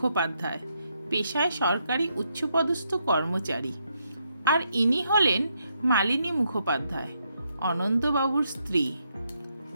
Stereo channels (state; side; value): inverted; both; correlation -0.78